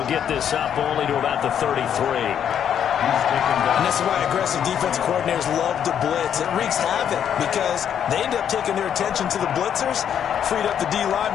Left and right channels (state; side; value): quieter; right; 9.0 dB